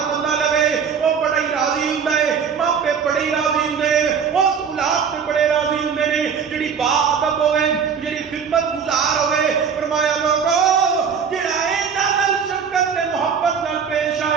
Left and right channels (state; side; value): quieter; left; 6.7 dB